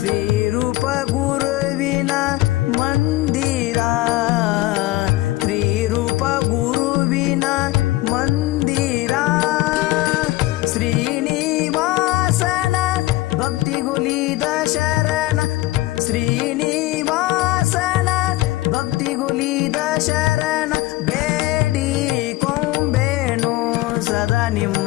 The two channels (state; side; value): quieter; right; 18.0 dB